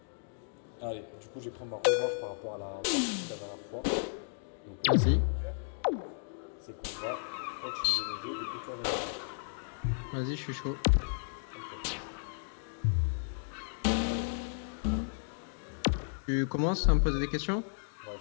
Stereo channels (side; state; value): right; silent; digital silence